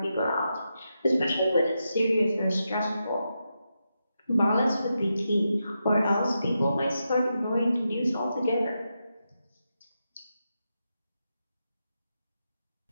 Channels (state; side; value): inverted; both; correlation -0.87